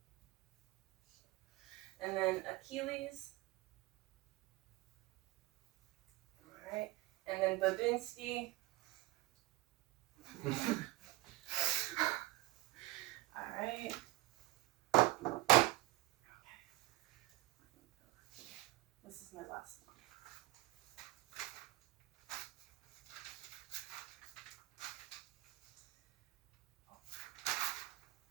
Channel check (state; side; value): quieter; left; 20.6 dB